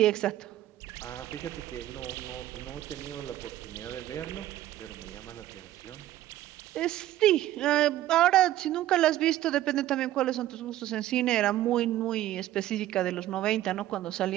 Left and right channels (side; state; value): left; quieter; 13.9 dB